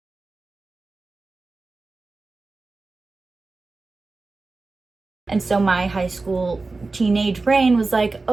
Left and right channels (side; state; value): left; quieter; 3.6 dB